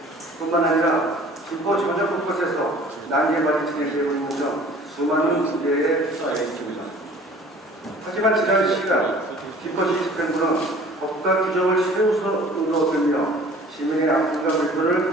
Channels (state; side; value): normal; both; correlation 0.49